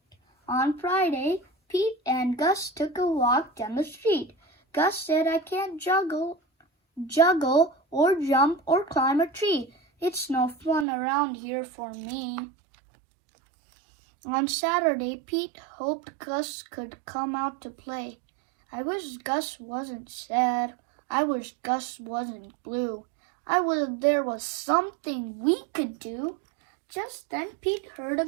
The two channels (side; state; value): left; drops out; at 10.9 s